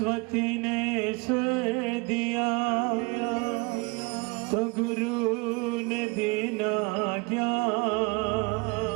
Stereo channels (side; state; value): left; quieter; 28.2 dB